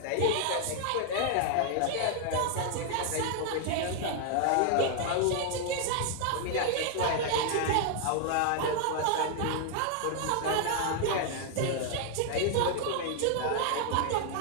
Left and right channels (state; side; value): different; both; correlation 0.00